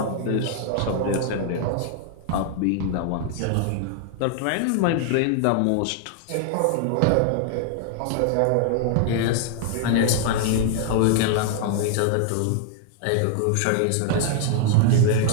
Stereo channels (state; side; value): different; both; correlation 0.00